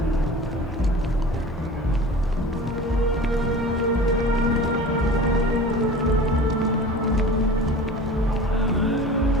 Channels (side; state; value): both; normal; correlation 0.38